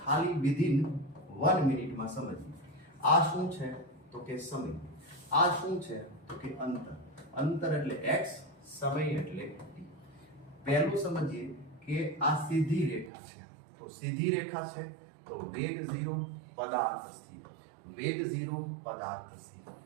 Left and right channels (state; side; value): drops out; left; at 13.1 s